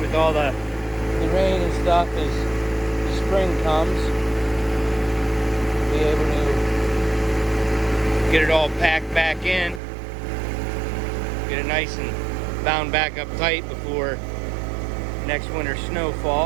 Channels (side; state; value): left; drops out; at 9.8 s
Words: all the rain and stuff as the spring comes, be able to get it all packed back in, get it nice and bound back up tight before next winter's